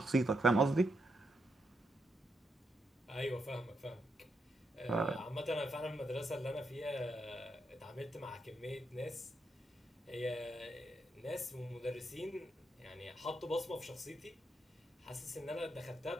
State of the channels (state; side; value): normal; both; correlation 0.81